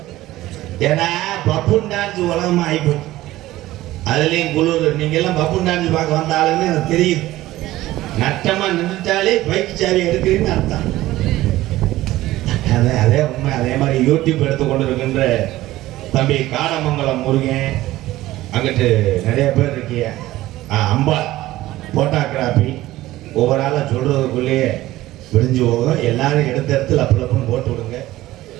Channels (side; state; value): left; quieter; 16.3 dB